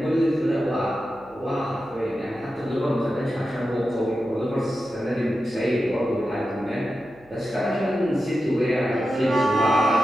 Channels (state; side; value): noise; right; hum, 28 dB below the sound